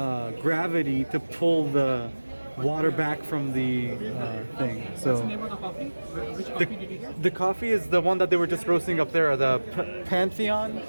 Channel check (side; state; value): both; inverted; correlation -1.00